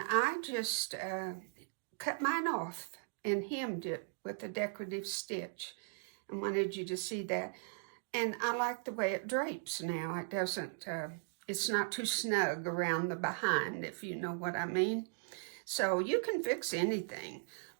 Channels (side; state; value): left; silent; digital silence